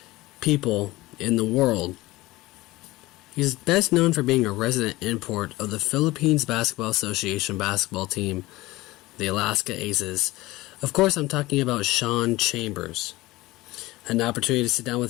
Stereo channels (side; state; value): right; quieter; 19.2 dB